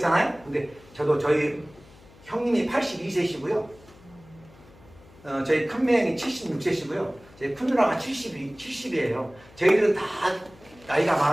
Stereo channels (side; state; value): left; noise; hum, 24 dB below the sound